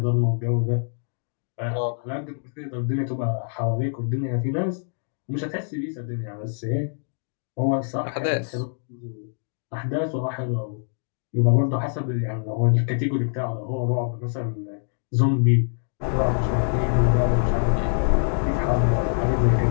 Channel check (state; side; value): silent; right; digital silence